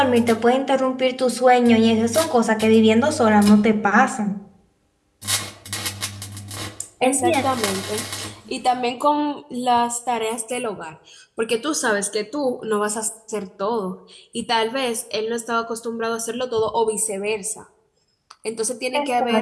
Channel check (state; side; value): identical; both; correlation 1.00